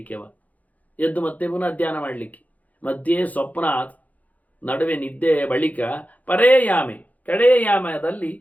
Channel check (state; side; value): late; right; 0.076 ms